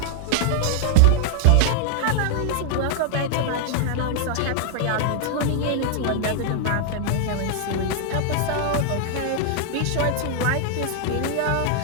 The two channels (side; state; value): both; different; correlation 0.00